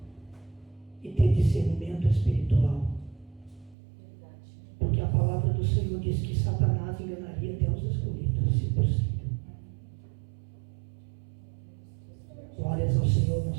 e ter discernimento espiritual. do Senhor diz que Satanás enganaria até os escolhidos, se possível. Glórias ao Senhor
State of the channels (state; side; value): drops out; left; at 3.8 s